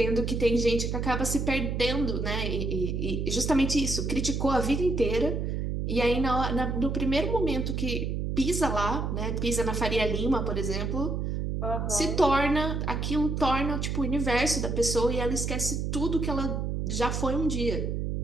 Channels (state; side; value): noise; right; hum, 1 dB below the sound